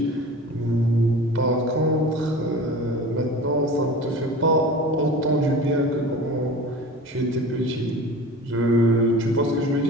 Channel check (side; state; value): both; normal; correlation 0.36